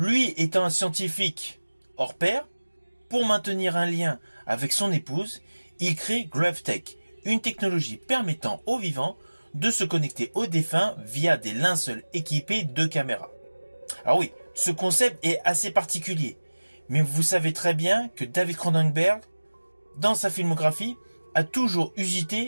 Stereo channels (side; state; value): both; inverted; correlation -1.00